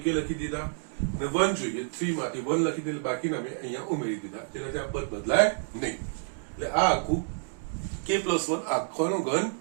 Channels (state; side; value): silent; left; 59 dB below the other